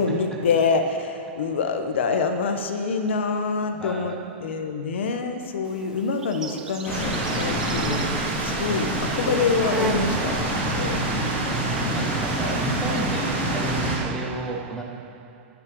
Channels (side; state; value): both; normal; correlation -0.15